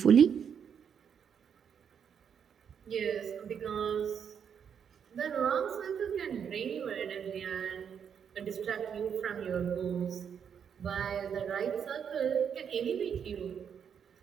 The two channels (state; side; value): quieter; left; 7.6 dB